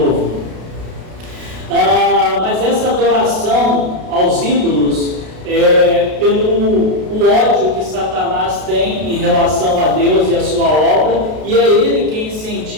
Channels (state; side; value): late; left; 32 ms